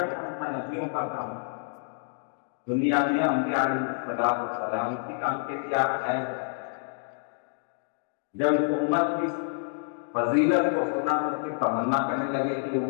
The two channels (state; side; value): silent; right; digital silence